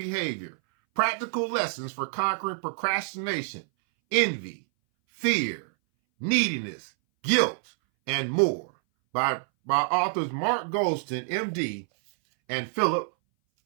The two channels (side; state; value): left; silent; 59 dB below the other